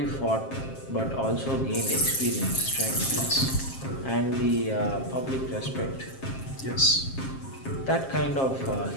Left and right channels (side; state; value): right; late; 7.5 ms